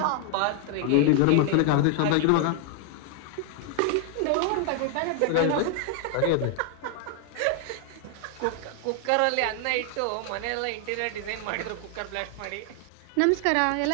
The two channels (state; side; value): different; both; correlation 0.00